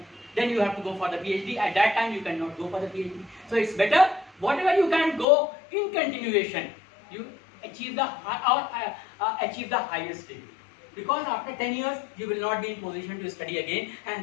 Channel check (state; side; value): drops out; right; at 5.2 s